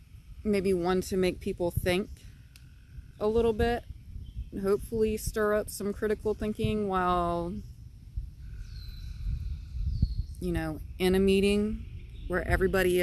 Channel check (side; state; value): both; identical; correlation 1.00